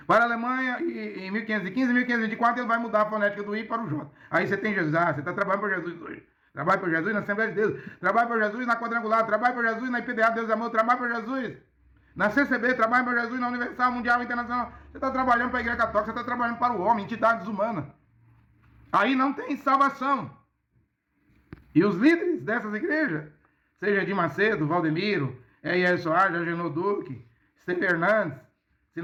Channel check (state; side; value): identical; both; correlation 1.00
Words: para a Alemanha. E em 1515 e 1524 ele vai mudar a fonética do I para o J. Aí você tem Jesus. Você está trabalhando por Jesus hoje. Trabalha por Jesus na Assembleia de Deus. Trabalha por Jesus na Quadrangular. Trabalha por Jesus na IPDA Deus e Amor. Trabalha por Jesus na CCB, trabalha para Jesus na Universal, Mundial, Internacional. Você está trabalhando para a Igreja Católica, você está trabalhando para o homem, entidades humanas. Aí não tem salvação. E os líderes dessas igrejas, seja Edir Macedo, Valdemiro, E.R. Soares, Agenor Duque, Esteve Hernandes,